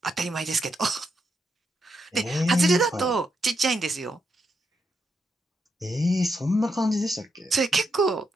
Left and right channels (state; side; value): normal; both; correlation 0.81